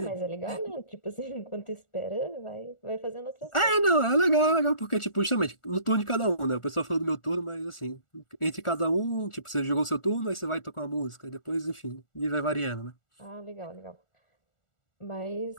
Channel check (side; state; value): right; late; 1.4 ms